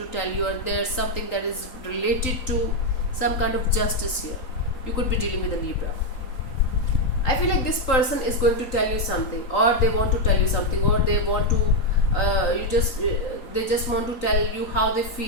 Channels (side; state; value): right; late; 3.9 ms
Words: tell you, or there's something that is related to some kind of justice here. You could be dealing with a Libra. I feel like this person is going to tell you something, or they want to tell you something, or they want to they just want to tell you how they